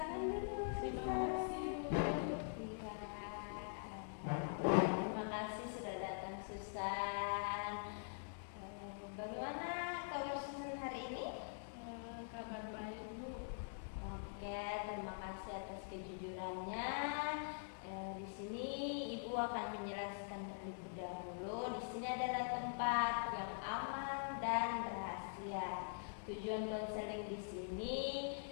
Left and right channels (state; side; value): silent; right; digital silence